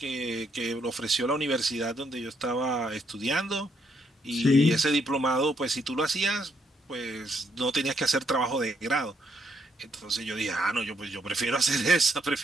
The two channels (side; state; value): both; normal; correlation 0.74